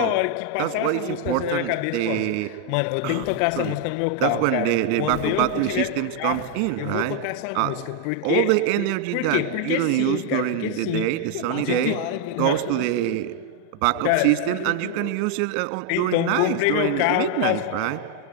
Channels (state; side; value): different; both; correlation 0.01